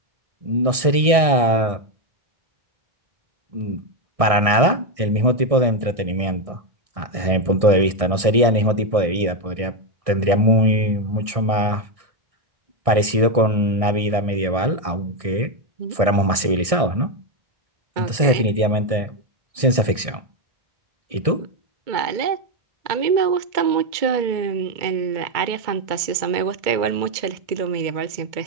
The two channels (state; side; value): late; left; 1.6 ms